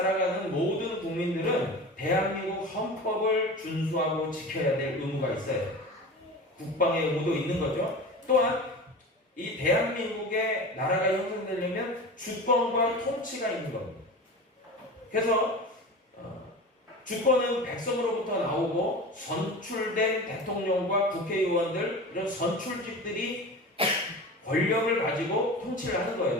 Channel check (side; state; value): both; normal; correlation 0.32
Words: 모든 국민들은 대한민국 헌법을 준수하고 지켜야 될 의무가 있어요. 국방의 의무도 있는 거죠. 또한 이 대한민국의 나라가 형성되려면 주권과 통치가 있는 겁니다. 그래서 주권은 백성으로부터 나오고 선출된 대통령과 국회의원들, 이런 선출직들이 권력을 가지고 통치를 하는